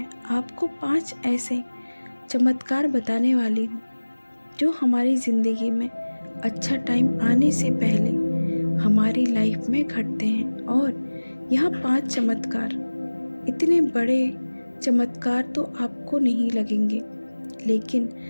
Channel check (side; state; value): both; inverted; correlation -1.00